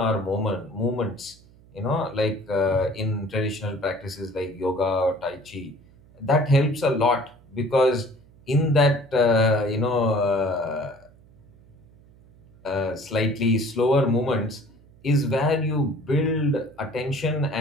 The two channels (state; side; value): noise; right; hum, 26 dB below the sound